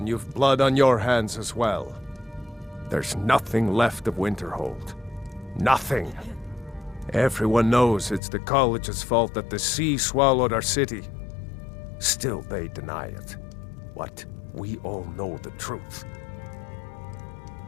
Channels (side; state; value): right; drops out; at 8.2 s